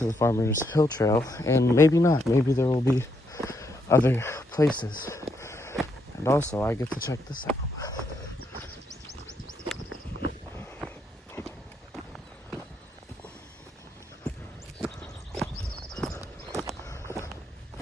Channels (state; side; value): normal; both; correlation 0.77